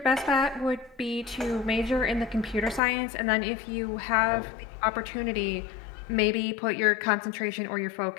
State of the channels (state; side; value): drops out; right; at 2.8 s